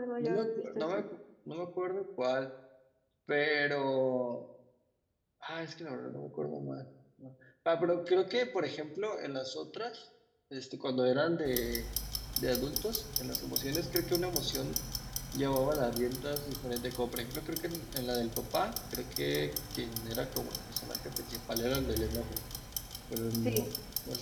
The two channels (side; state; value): both; identical; correlation 1.00